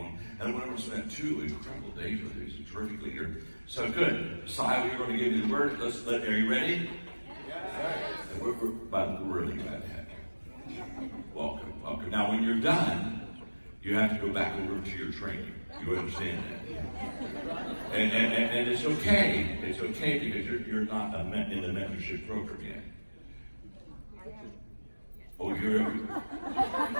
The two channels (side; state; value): both; inverted; correlation -1.00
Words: And I went over and spent 2 incredible days with him. He's a terrific leader. So good. Messiah, we're going to give you the word. Are you ready? Yes. We're really glad to have you. Welcome, welcome. Now, when you're done, you have to go back over to your training. You understand that? And it's okay. It's okay because you're not in the mentorship program yet. Oh,